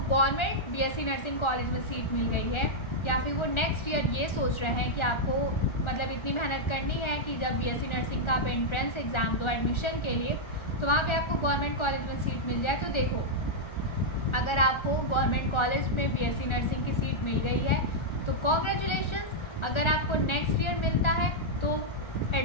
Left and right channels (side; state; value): right; late; 1.3 ms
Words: बीएससी नर्सिंग कॉलेज में सीट मिल गई है, या फिर वो नेक्स्ट ईयर ये सोच रहे हैं कि आपको मतलब इतनी मेहनत करनी है कि जब बीएससी नर्सिंग का आप एंट्रेंस एग्ज़ाम दो एडमिशन के लिए, तो वहाँ पे आपको गवर्नमेंट कॉलेज में सीट मिल जाए, तो देखो अगर आपको गवर्नमेंट कॉलेज में बीएससी नर्सिंग की सीट मिल गई है तो कॉन्ग्रेचुलेशंस। अगर आपको नेक्स्ट ईयर मिलता है तो